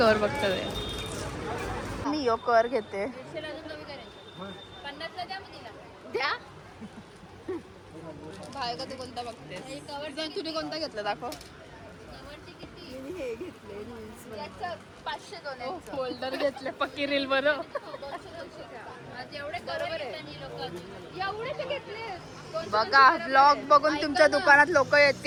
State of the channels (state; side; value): identical; both; correlation 1.00